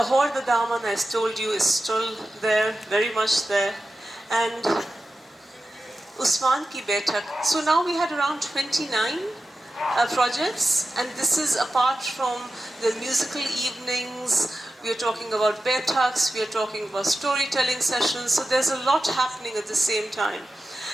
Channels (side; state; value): both; normal; correlation 0.93